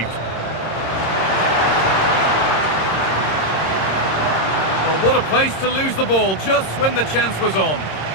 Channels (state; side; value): late; right; 26 ms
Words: Well, what a place to lose the ball just when the chance was on.